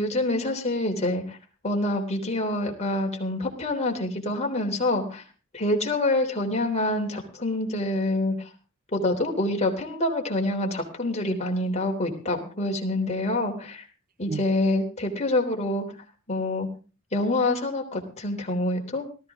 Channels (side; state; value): both; normal; correlation 0.29